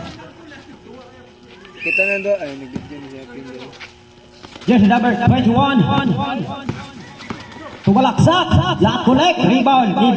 Kita na do ay nag-video ni siya pin. Jersey number 21 to Balaksak. Lot collect. Rebound.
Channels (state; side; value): identical; both; correlation 1.00